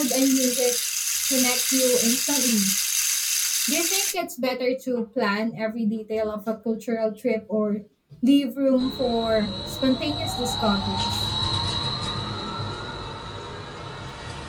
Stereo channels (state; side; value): identical; both; correlation 1.00